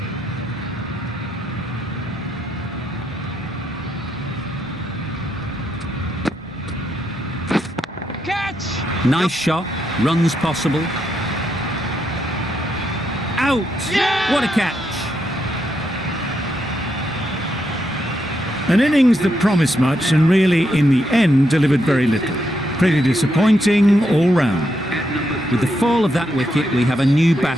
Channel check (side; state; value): both; normal; correlation 0.80